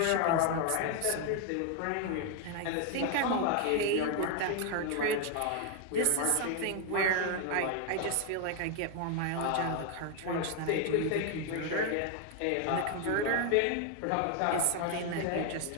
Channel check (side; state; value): both; different; correlation 0.00